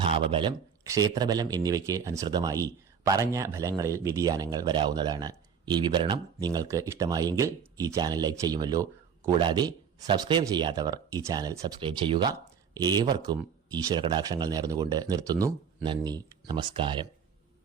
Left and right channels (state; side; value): quieter; left; 7.1 dB